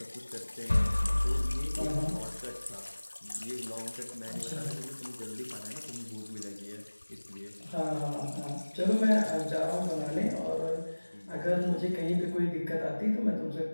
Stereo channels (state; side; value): inverted; both; correlation -1.00